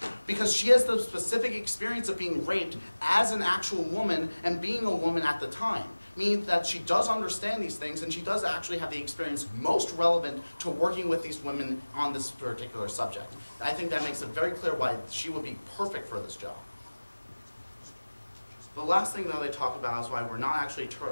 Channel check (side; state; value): both; inverted; correlation -1.00